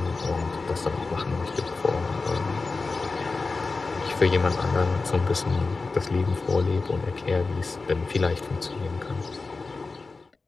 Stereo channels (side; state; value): right; quieter; 3.9 dB